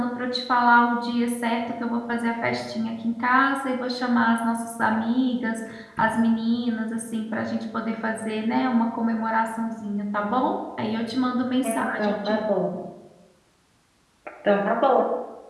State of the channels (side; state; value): both; identical; correlation 1.00